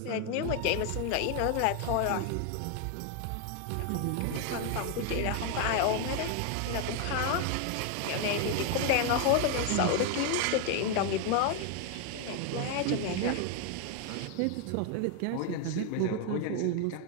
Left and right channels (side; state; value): both; different; correlation 0.01